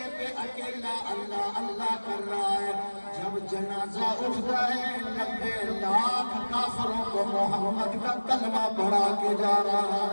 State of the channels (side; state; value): both; inverted; correlation -1.00